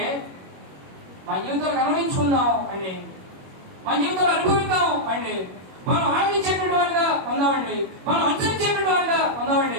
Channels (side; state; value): left; late; 21 ms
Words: మన జీవితాలకు అనుభవించుకుందాం అండి, మన జీవితంలో అనుభవిద్దాం అండి, మనం ఆనందించేటువంటి వారిగా ఉందామండి, మనం అనుసరించేటువంటి వారిగా ఉందామండి.